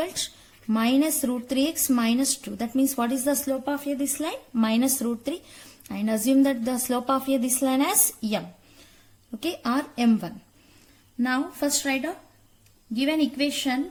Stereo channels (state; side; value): identical; both; correlation 1.00